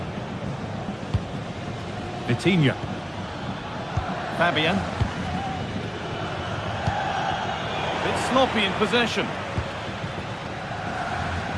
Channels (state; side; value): identical; both; correlation 1.00